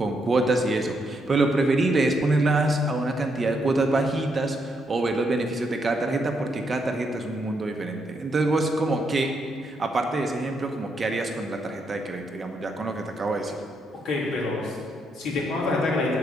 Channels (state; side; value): normal; both; correlation 0.78